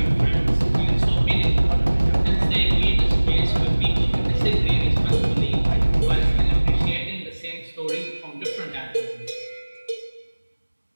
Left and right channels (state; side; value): inverted; both; correlation -1.00